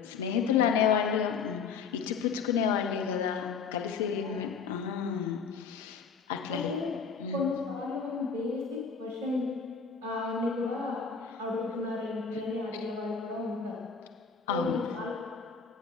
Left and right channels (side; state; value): right; quieter; 5.8 dB